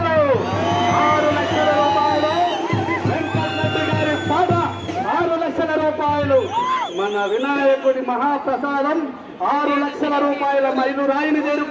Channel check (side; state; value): both; identical; correlation 1.00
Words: 6 లక్షల రూపాయలు. వెంకటరెడ్డి గారి పాట 6 లక్షల రూపాయలు. మన వినాయకుడి మహాప్రసాదం 6 లక్షల రూపాయల మైలురాయిని